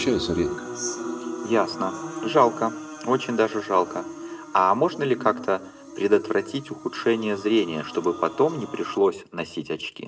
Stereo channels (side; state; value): both; identical; correlation 1.00